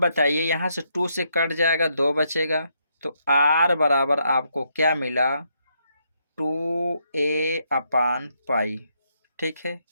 यहाँ से 2 से कट जाएगा, 2 बचेगा, तो r बराबर आपको क्या मिला, 2a/पाई। ठीक है,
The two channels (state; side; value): inverted; both; correlation -0.76